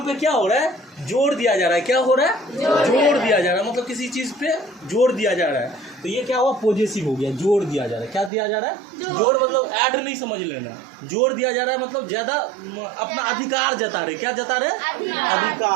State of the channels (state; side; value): drops out; left; at 8.3 s